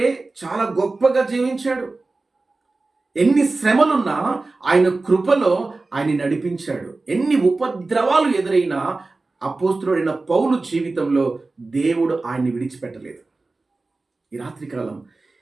చాలా గొప్పగా జీవించాడు. ఎన్ని శ్రమలున్నా ఆయన కృపలో ఆయన నడిపించాడు. ఎన్ని ఉపద్రవాలు ఎదురైనా అపోస్తులైన పౌలు జీవితంలో దేవుడు ఆయన్ని విడిచిపెట్టలేదు. ఈ రాత్రికాలం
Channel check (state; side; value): quieter; left; 3.5 dB